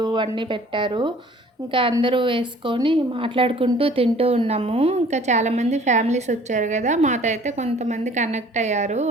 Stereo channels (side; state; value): both; normal; correlation 0.52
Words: అన్నీ పెట్టారు. ఇంకా అందరూ వేసుకొని మాట్లాడుకుంటూ తింటూ ఉన్నాము. ఇంకా చాలామంది ఫ్యామిలీస్ వచ్చారు గదా! మాతో అయితే కొంతమంది కనెక్ట్ అయ్యారు.